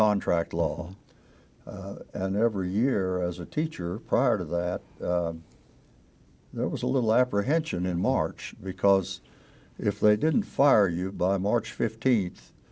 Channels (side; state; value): both; identical; correlation 1.00